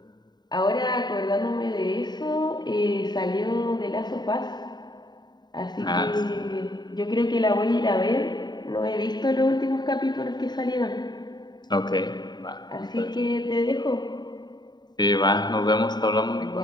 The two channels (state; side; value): late; right; 0.20 ms